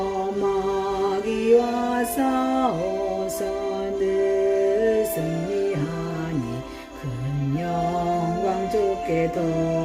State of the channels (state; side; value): identical; both; correlation 1.00